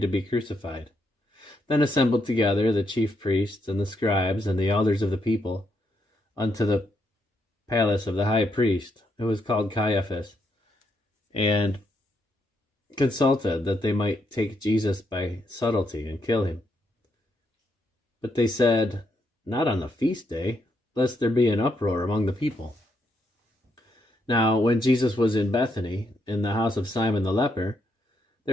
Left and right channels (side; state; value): both; normal; correlation 0.78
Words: to be crucified. Then assembled together the chief priests and the scribes and the elders of the people unto the palace of the high priest, who was called Caiaphas, and consulted that they might take Jesus by subtlety and kill him. But they said, Not on the feast day, lest there be an uproar among the people. Now when Jesus was in Bethany, in the house of Simon the leper,